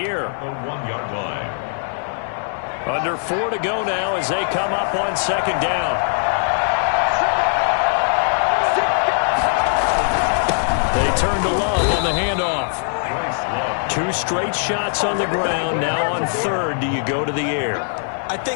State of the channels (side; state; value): right; silent; 58 dB below the other